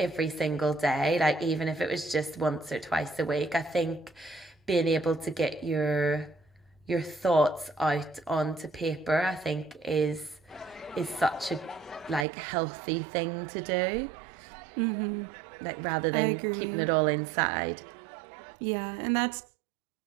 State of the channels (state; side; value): drops out; left; at 12.2 s